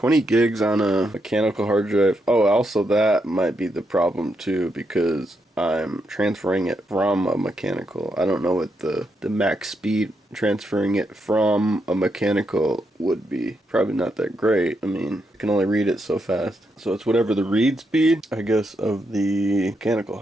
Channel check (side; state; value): both; normal; correlation 0.81